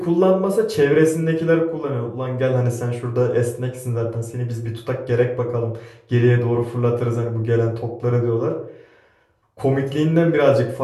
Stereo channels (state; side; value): identical; both; correlation 1.00